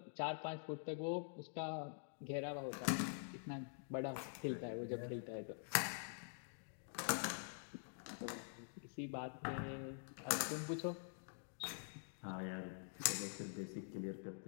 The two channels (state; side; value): silent; right; digital silence